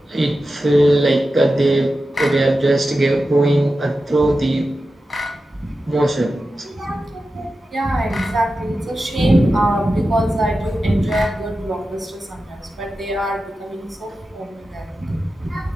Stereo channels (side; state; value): both; normal; correlation 0.92